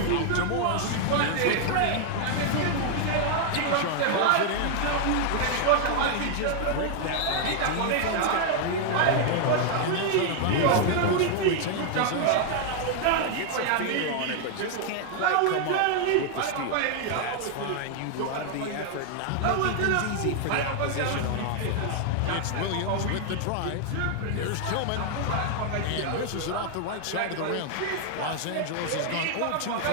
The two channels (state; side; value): different; both; correlation 0.00